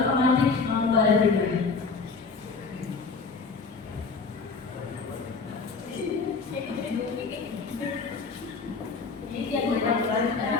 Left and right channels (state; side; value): quieter; right; 4.5 dB